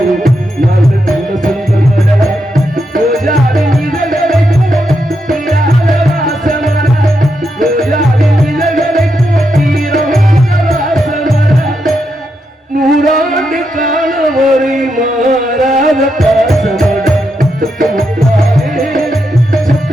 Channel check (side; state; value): both; normal; correlation 0.83